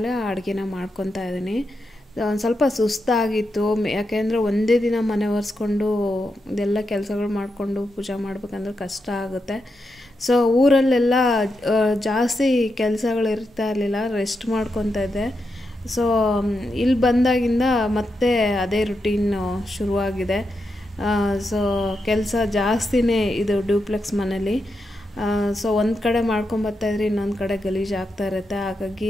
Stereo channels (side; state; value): both; normal; correlation 0.86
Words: ಅಡುಗೆನ ಮಾಡ್ಕೊತಾ ಇದ್ದೀನಿ. ಒಂದು ಸ್ವಲ್ಪ ಸುಸ್ತಾಗಿತ್ತು, ಯಾಕೆಂದರೆ ಒಂದೇ ದಿನ ಮನೆ ಒರೆಸ್ಕೊಂಡು ಇದೆಲ್ಲ ಕೆಲಸಗಳು ಮಾಡಿಕೊಂಡು ಪೂಜೆ ಮಾಡ್ಬೇಕಂದ್ರೆ ಕಷ್ಟ ಆಗುತ್ತೆ. ಸೊ ಊರಲ್ಲೆಲ್ಲ ಜಾಸ್ತಿ ಕೆಲಸಗಳು ಇರ್ತಾ ಇರಲಿಲ್ಲ, ರೆಸ್ಟ್ ಮಾಡ್ಕೊತಾ ಇದ್ದೆ. ಸೊ ಇಲ್ಲಿ ಬಂದಾಗಿಂದ ಮತ್ತೆ ಅದೇ ರುಟೀನ್ ಶುರುವಾಗಿದೆ. ಸೊ ಕೆಲಸ ಜಾಸ್ತಿನೇ ಇದು ಡ್ಯೂಪ್ಲೆಕ್ಸ್ ಮನೇಲಿ. ಸೊ ಒಂದು ಕಡೆ ಮಾಡ್ಕೊಂಬರ್ತಾಯಿದ್ರೆ ಇನ್ನೊಂದು ಕಡೆ ಗಲೀಜು ಆಗ್ತಾ ಇರುತ್ತೆ.